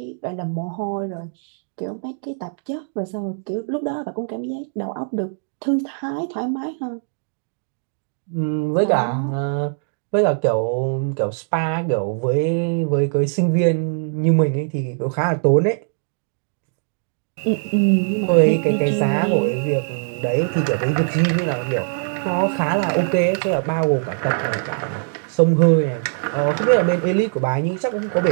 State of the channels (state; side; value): silent; left; digital silence